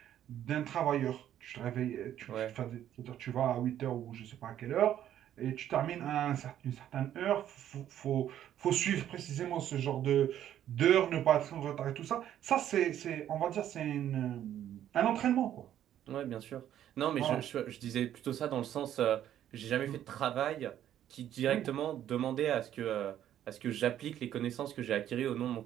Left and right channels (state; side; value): quieter; left; 11.1 dB